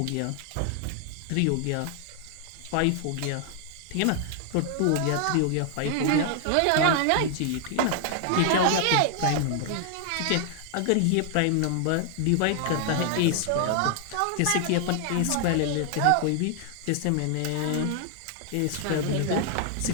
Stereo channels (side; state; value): both; different; correlation 0.00